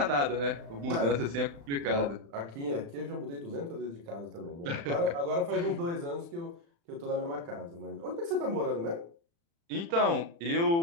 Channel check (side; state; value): left; late; 35 ms